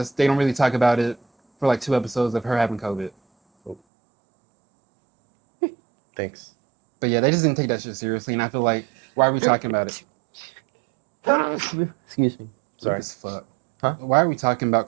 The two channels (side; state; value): left; drops out; at 3.8 s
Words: They don't really talk about it for like 2 episodes of her having COVID. Thanks. But yeah, they just didn't take that shit seriously, and I feel like, why are we talking about it? Excuse me. Sorry. Weak as fuck. Huh? Why are we talking about